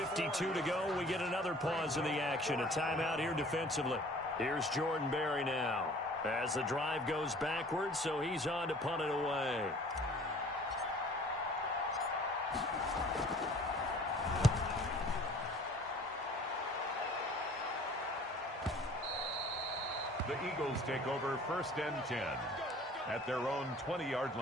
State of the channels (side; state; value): both; normal; correlation 0.50